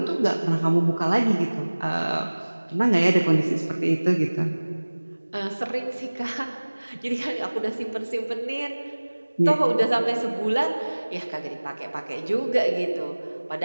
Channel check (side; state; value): both; inverted; correlation -1.00